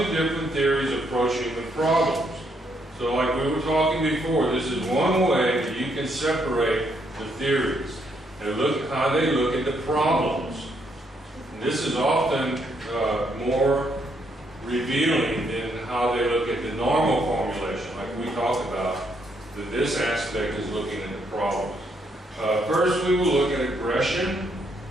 different theories approach human problems? So like we were talking before, this is one way that you can separate the theories and look at how they look at the problems. And this is often more revealing than how they look at the normal formulation, like we talked about, that this aspect is looking at the problems. First, we will look at aggression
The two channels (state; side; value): normal; both; correlation 0.74